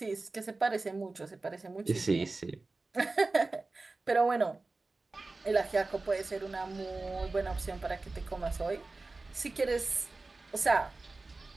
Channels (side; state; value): left; quieter; 3.5 dB